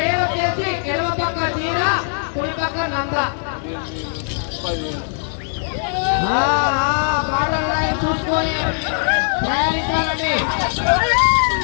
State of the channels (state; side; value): silent; right; 58 dB below the other